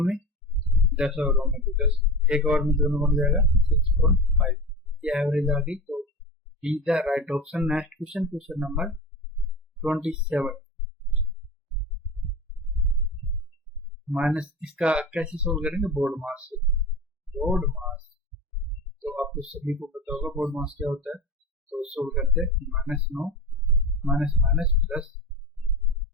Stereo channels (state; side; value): normal; both; correlation 0.29